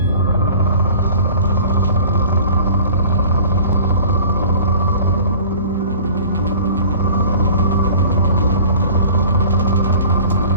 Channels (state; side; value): inverted; both; correlation -0.45